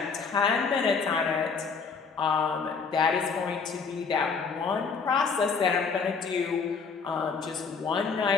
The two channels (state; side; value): quieter; right; 5.3 dB